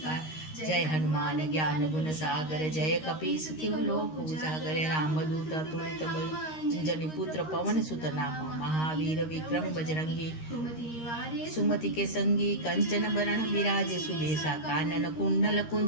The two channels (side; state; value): right; late; 13 ms